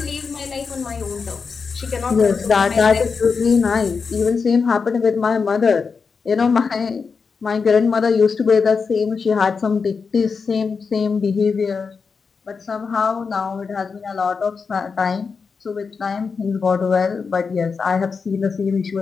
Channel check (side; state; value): right; quieter; 5.2 dB